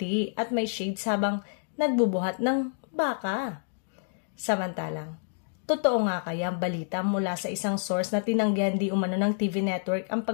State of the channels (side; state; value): right; silent; digital silence